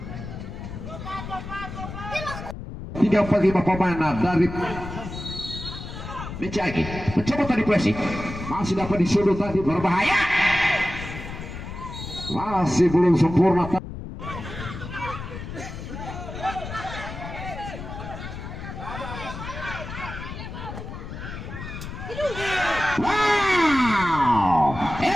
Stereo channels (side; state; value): left; noise; rumble, 9 dB below the sound